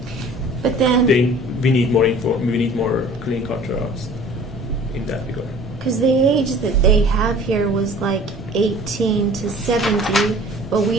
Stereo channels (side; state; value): both; normal; correlation 0.47